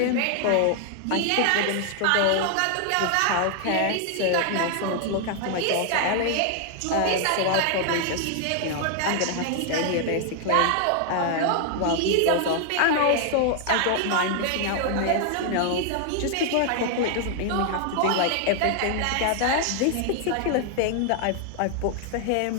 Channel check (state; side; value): different; both; correlation 0.00